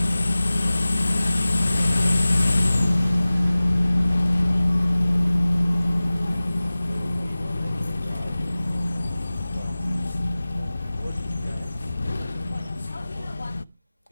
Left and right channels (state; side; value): inverted; both; correlation -0.98